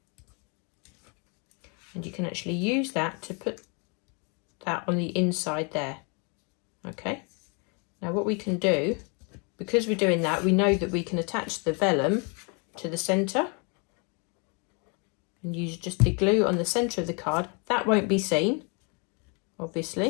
and you can actually use that to put that on the inside there. Okay, now what we can do, because we're doing that, we know that we can attach the vellum to the centre and use just the glue on the centre of the card. That won't be seen,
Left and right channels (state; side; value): quieter; right; 34.6 dB